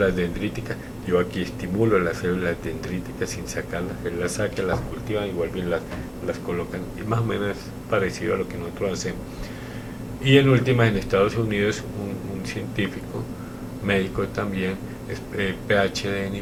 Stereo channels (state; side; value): identical; both; correlation 1.00